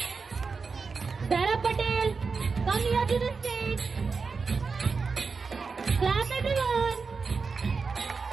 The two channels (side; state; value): left; quieter; 4.8 dB